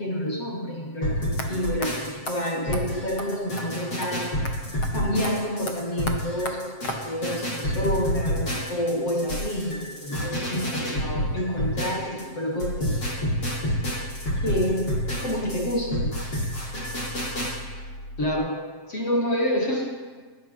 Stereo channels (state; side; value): late; right; 7.6 ms